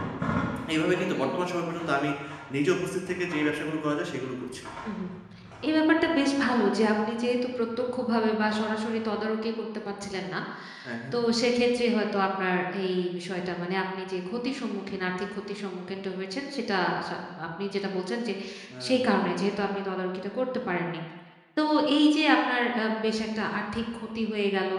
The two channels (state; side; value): identical; both; correlation 1.00